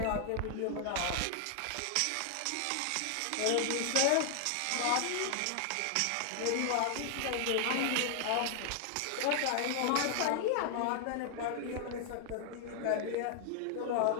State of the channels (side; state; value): both; different; correlation 0.00